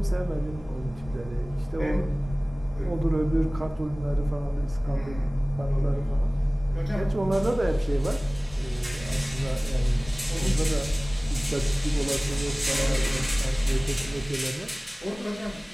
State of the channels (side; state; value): both; normal; correlation 0.98